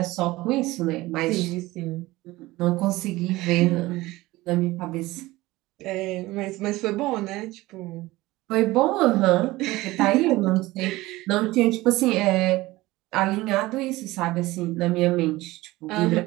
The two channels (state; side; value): quieter; left; 19.0 dB